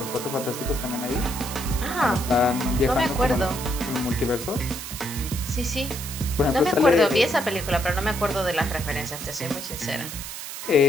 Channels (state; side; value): noise; right; hiss, 9 dB below the sound